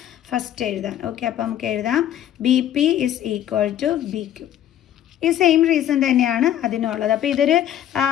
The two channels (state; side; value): quieter; right; 11.3 dB